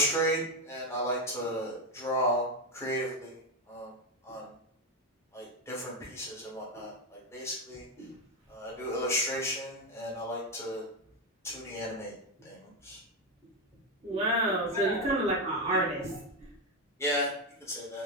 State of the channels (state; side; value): normal; both; correlation 0.09